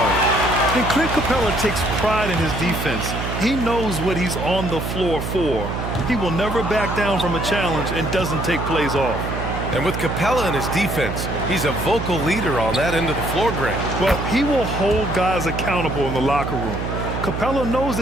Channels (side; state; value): right; noise; hum, 4 dB below the sound